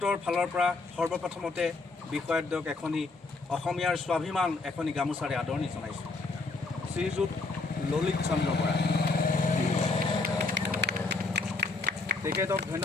ফালৰ পৰা সৰ্বপ্ৰথমতে বিষয়াদ্বয়ক এখনি অসমীয়াৰ স্বাভিমান এখনি গামোচাৰে আদৰণি জনাইছোঁ। শ্ৰীযুত ললিত চন্দ্ৰ বৰা, তেখেতক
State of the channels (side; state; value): right; quieter; 3.7 dB